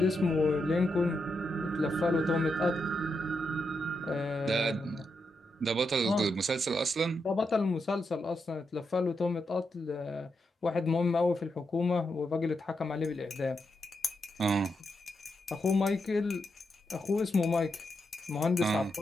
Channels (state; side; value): normal; both; correlation 0.84